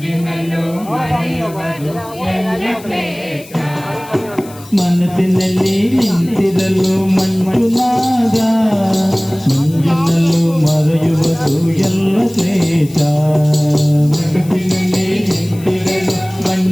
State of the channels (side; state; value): left; noise; hiss, 20 dB below the sound